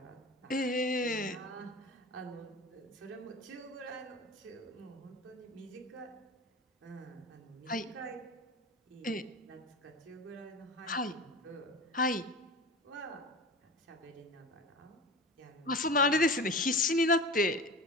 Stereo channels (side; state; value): both; normal; correlation 0.32